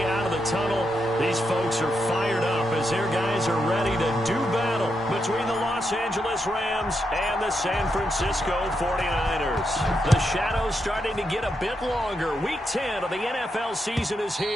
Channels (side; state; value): both; normal; correlation 0.83